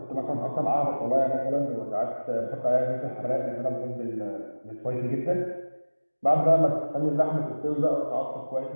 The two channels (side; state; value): both; inverted; correlation -1.00